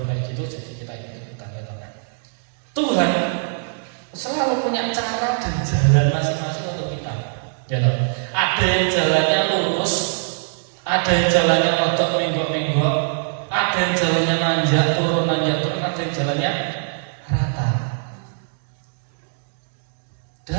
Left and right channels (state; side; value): silent; left; digital silence